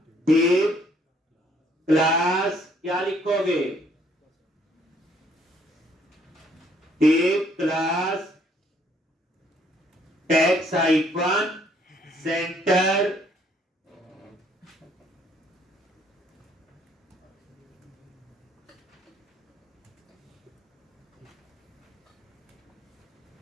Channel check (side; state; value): both; normal; correlation 0.65